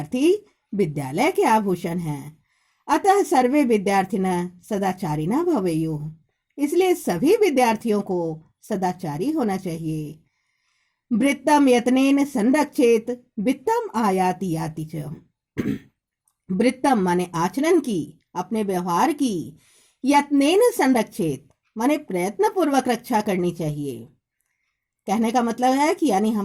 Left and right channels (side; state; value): both; identical; correlation 1.00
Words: विद्यालय के आभूषण है। अतः सर्वे विद्यार्थिनः सदाचारिणः भवेयुः। इसलिए सभी विद्यार्थियों को सदाचारी होना चाहिए। वृत्तम यत्नेन संरक्षेत वित्तम आयाति याति च। वृत्तम माने आचरण की, अपने व्यवहार की, यत्नेन संरक्षेत माने प्रयत्न पूर्वक रक्षा करनी चाहिए। कहने का मतलब है कि यानी